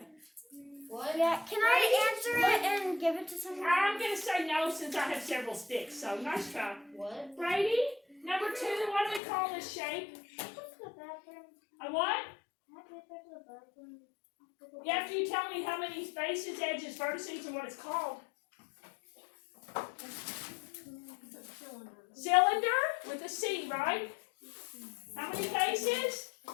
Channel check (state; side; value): drops out; right; at 9.2 s